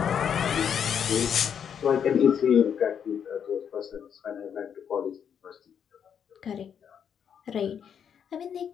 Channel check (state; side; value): quieter; right; 8.0 dB